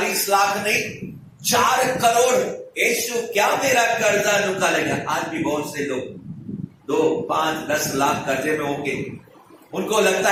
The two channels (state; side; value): identical; both; correlation 1.00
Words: लाख नहीं, 4 करोड़। यीशु, क्या मेरा कर्जा निकालेगा? आज भी बहुत से लोग 2, 5, 10 लाख कर्जे में होंगे। उनको लगता